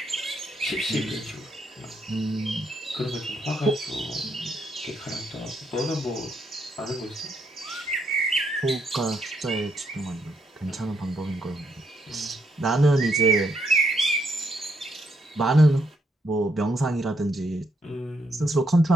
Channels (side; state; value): both; normal; correlation 0.76